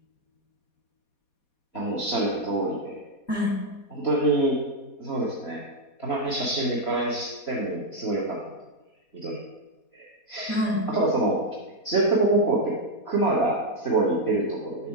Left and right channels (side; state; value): right; late; 4.2 ms